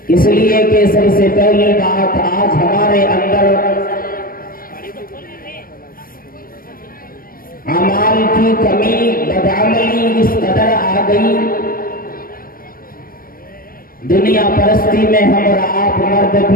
इसलिए कि सबसे पहली बात, आज हमारे अंदर अमाल की कमी, बदअमली इस कदर आ गई, दुनिया परस्ती में हम और आप, मर्द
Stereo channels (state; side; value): late; right; 0.42 ms